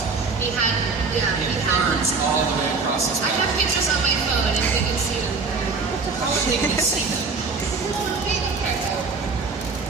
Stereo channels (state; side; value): quieter; left; 4.5 dB